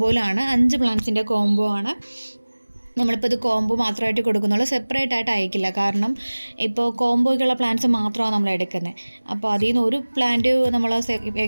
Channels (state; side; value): inverted; both; correlation -1.00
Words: 5 പ്ലാന്റ്സിൻ്റെ കോംബോ ആണ്. നമ്മളിപ്പോൾ ഇത് കോംബോ മാത്രമായിട്ട് കൊടുക്കുന്നുള്ളൂ, സെപ്പറേറ്റ് ആയിട്ട് അയക്കില്ല. കാരണം ഇപ്പോൾ കോംബോയ്ക്കുള്ള പ്ലാന്റ്സ് മാത്രമാണ് നമ്മൾ എടുക്കുന്നത്. അപ്പോൾ അതിൽ നിന്ന് ഒരു പ്ലാന്റ് നമ്മൾ